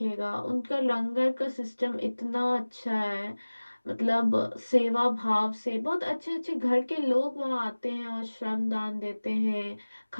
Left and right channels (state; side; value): inverted; both; correlation -1.00